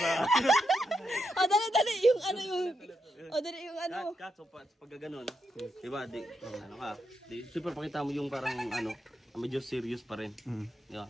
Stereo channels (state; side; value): normal; both; correlation 0.83